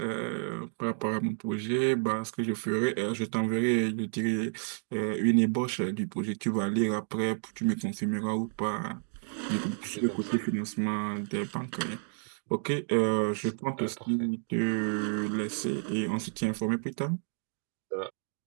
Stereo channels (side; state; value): left; silent; 57 dB below the other